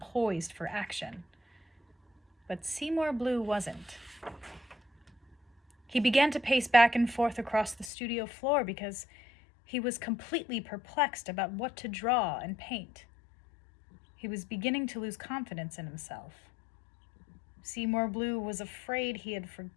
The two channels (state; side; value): drops out; right; at 7.9 s